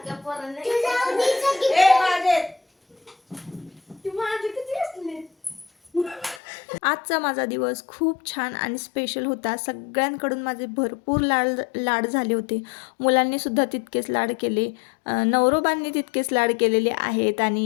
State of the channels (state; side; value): drops out; right; at 6.4 s